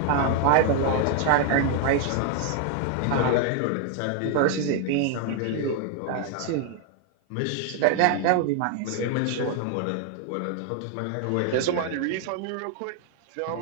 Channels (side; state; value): both; different; correlation 0.00